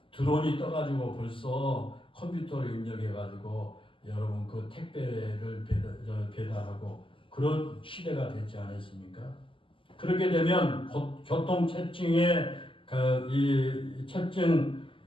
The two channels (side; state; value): right; late; 0.25 ms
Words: 드론이 떠가지고 벌써 컴퓨터를 입력해가지고 여러분 그 택배를 배달하고 그런 시대가 됐지 않았습니까? 그렇게 되면 교통 체증의 이 체증